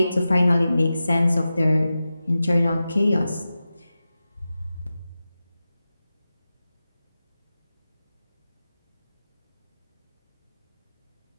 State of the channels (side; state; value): both; inverted; correlation -0.93